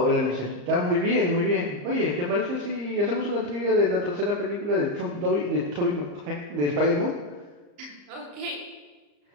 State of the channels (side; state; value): left; late; 34 ms